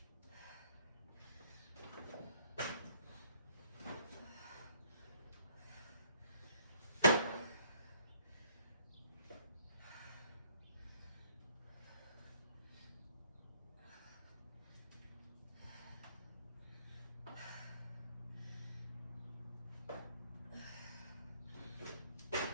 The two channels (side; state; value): both; inverted; correlation -0.62